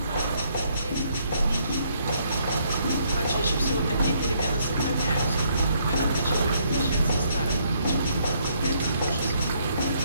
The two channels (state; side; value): inverted; both; correlation -0.70